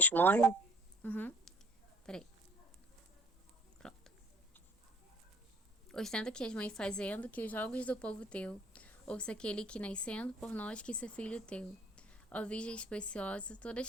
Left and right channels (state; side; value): normal; both; correlation 0.55